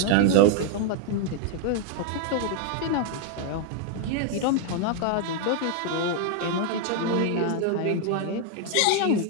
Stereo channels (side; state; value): both; different; correlation 0.00